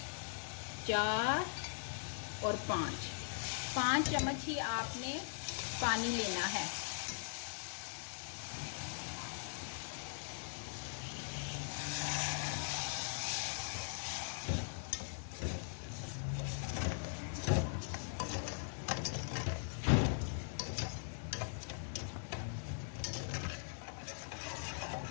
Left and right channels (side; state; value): right; silent; digital silence